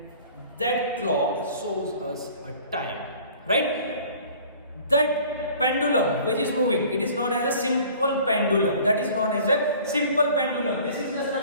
that clock shows us a time, right? That pendulum which is moving, it is known as a simple pendulum. That is known as a simple pendulum. This is the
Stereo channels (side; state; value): both; inverted; correlation -0.49